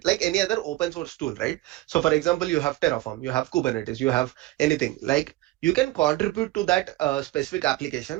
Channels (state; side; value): quieter; left; 17.6 dB